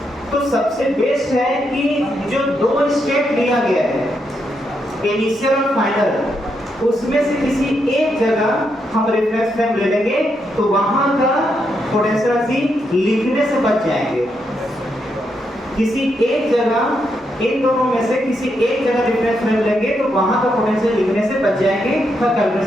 तो सबसे बेस्ट है कि जो 2 स्टेप लिया गया है, इनिशियल और फाइनल, उसमें से किसी एक जगह हम रेफरेंस फ्रेम ले लेंगे तो वहां का पोटेंशियल एनर्जी लिखने से बच जाएंगे। किसी एक जगह, इन दोनों में से किसी एक जगह रेफरेंस फ्रेम लेंगे तो वहां का पोटेंशियल लिखने से बच जाएंगे, तो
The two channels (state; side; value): normal; both; correlation 0.80